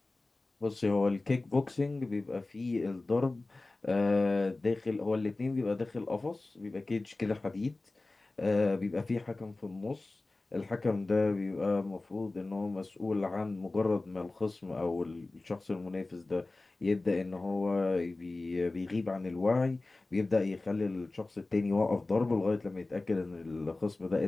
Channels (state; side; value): quieter; right; 3.1 dB